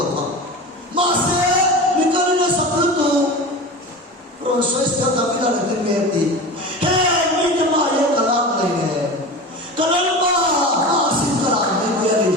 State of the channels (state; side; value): normal; both; correlation 0.30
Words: Masih, mikirnya sebelum tu proses dia tapi dah nanti mesti. Hei, ini macam kalam lagi. Kalam masih kalam ni dia.